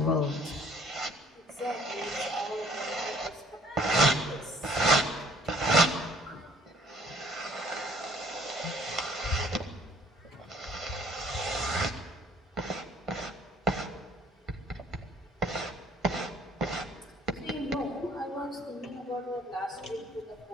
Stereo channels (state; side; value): normal; both; correlation 0.59